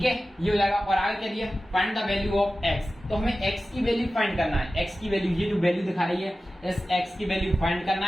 है, ये हो जाएगा। और आगे क्या दिया, find the value of x। तो हमें x की वैल्यू फाइंड करना है, x की वैल्यू, ये जो वैल्यू दिखा रही है, इस x की वैल्यू फाइंड करना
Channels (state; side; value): normal; both; correlation 0.95